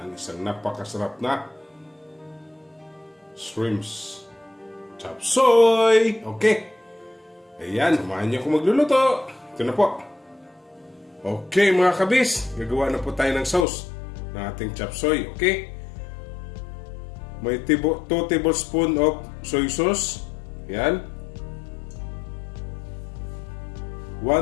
isang napakasarap na shrimps chop suey. Okay, ayan, samahan niyo ako magluluto. Ito na po. Okay mga kabis, gagawa na po tayo ng sauce ng ating chop suey. Okay, may 2 tablespoon of soy sauce. Ayan,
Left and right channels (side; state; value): right; drops out; at 13.7 s